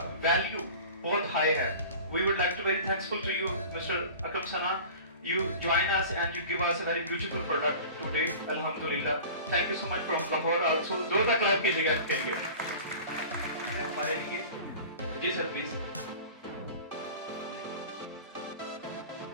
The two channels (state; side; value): inverted; both; correlation -0.39